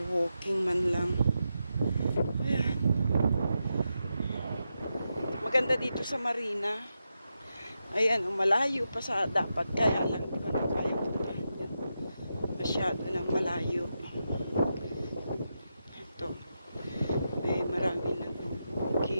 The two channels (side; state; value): both; inverted; correlation -0.87